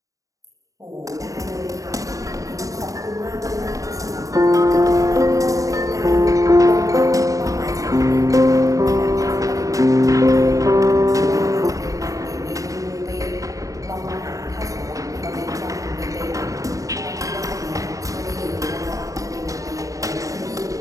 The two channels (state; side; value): late; left; 0.16 ms